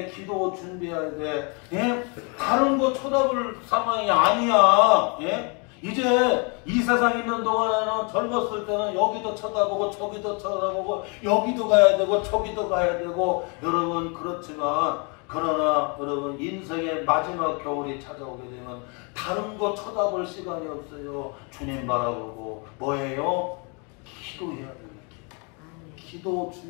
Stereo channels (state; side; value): quieter; right; 33.9 dB